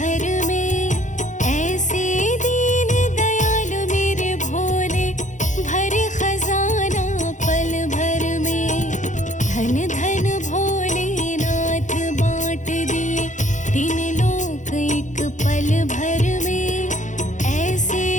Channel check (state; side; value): late; right; 0.36 ms